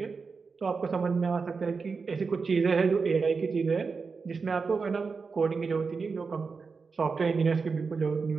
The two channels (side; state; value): left; quieter; 4.9 dB